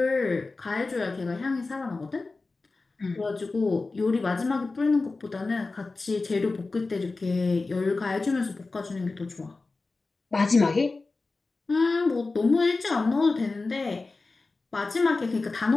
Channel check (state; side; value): quieter; right; 3.7 dB